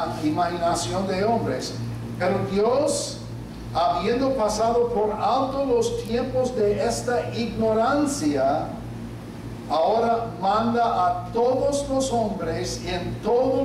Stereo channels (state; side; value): identical; both; correlation 1.00